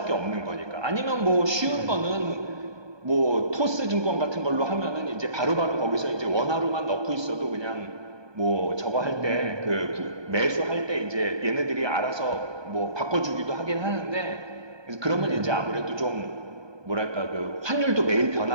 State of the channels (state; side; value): late; left; 1.2 ms